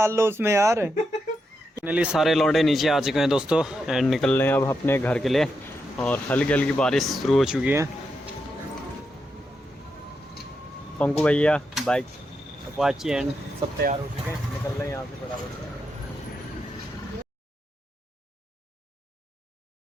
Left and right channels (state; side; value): normal; both; correlation 0.84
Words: लो उसमें यार। फाइनली सारे लौंडे नीचे आ चुके हैं दोस्तों एंड निकल रहे हैं अब अपने घर के लिए। और हल्की हल्की बारिश शुरू हो चुकी है। पंकु भैया बाइक अपाची एंड सब तैयार हो चुके हैं, निकल रहे हैं यहाँ से बराबर।